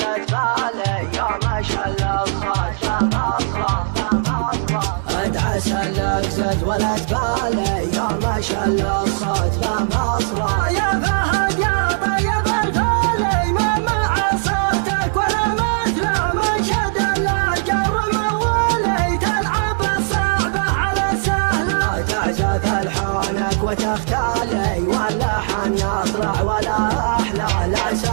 تبالي يا ما شاء الله الصوت بنفصله ادعى سلك زاد ولا تبالي يا ما شاء الله الصوت بمصره يا فهد يا طيب الفالي ما مع صوتك ولا مثله من شد الاجر موالي تلعب الصعبه على سهله تعزف الحونك وتغتالي واللحن يطلع ولا احلى لا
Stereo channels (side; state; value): left; silent; 66 dB below the other